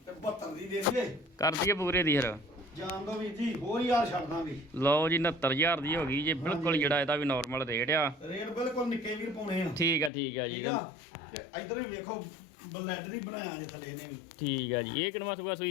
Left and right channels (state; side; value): drops out; right; at 10.1 s